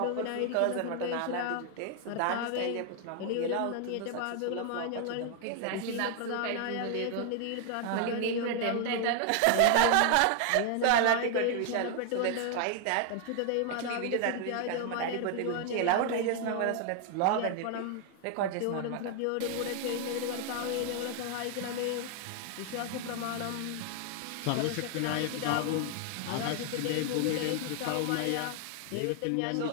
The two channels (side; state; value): both; different; correlation 0.00